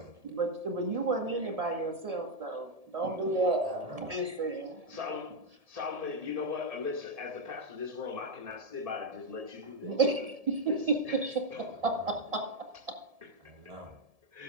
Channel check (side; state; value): left; late; 1.7 ms